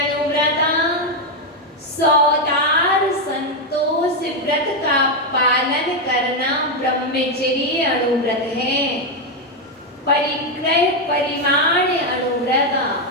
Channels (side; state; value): both; normal; correlation 0.04